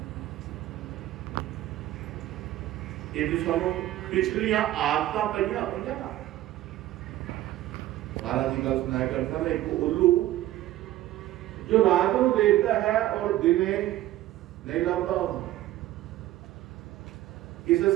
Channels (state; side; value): quieter; left; 14.8 dB